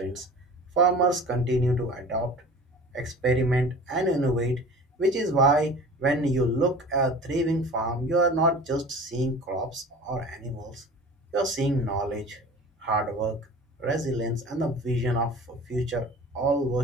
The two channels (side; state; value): both; normal; correlation 0.40